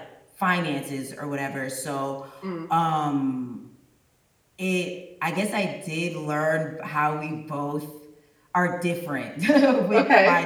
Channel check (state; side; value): identical; both; correlation 1.00